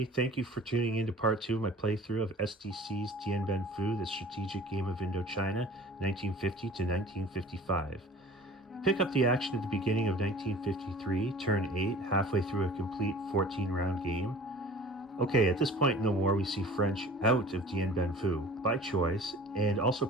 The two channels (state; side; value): normal; both; correlation 0.44